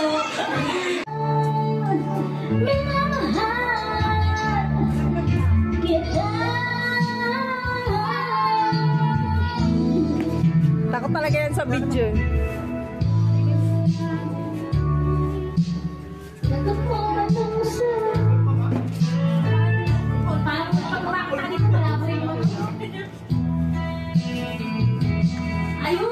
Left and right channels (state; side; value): identical; both; correlation 1.00